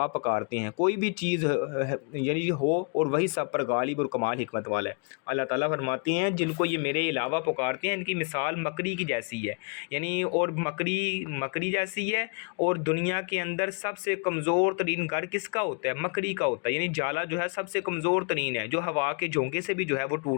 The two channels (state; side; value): quieter; right; 38.1 dB